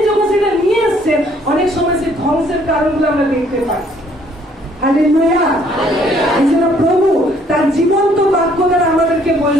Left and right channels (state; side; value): normal; both; correlation 0.63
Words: যখন সেটা নিয়ে আসছেন, অনেক সময় সে ধ্বংসের কারণগুলো আমরা দেখতে পাই। হালেলুয়া। এজন্য প্রভু তার জীবন্ত বাক্য দ্বারা আমাদেরকে